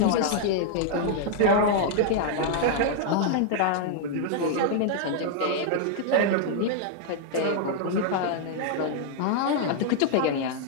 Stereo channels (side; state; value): both; different; correlation -0.01